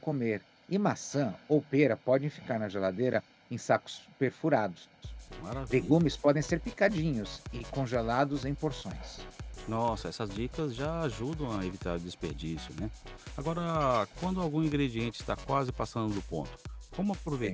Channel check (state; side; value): identical; both; correlation 1.00